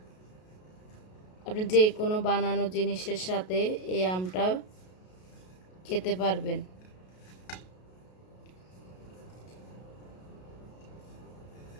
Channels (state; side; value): late; right; 33 ms